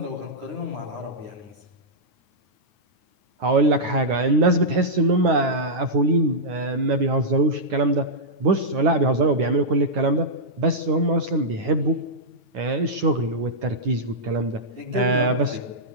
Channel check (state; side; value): late; left; 9.3 ms